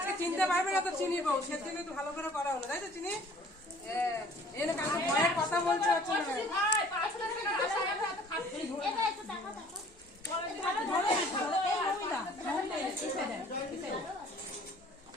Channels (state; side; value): normal; both; correlation 0.53